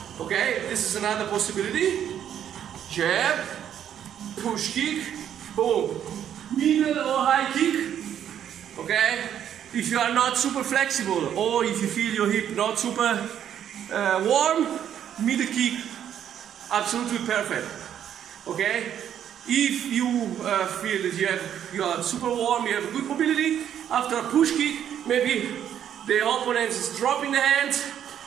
Okay, this is another possibility. Jab, push kick, boom. Middle or high kick, okay? If you are not super flexible or if you feel your hip not super warm, middle kick, absolutely perfect, okay? If you feel that you are super warm, you have good mobility, after a push kick, maybe the opponent is dropping the hands,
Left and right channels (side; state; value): left; quieter; 9.8 dB